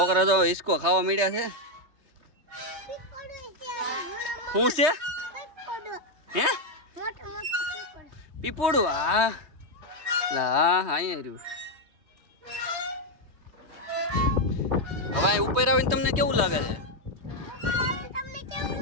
તો હિસકો ખાવા મળ્યા છે. શું છે? હે પીપોડું? હા લા અહીંયા રહ્યું. હવે અહીં ઉપર આવીને તમને કેવું લાગે છે? તમને કેવું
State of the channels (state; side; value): late; left; 3.2 ms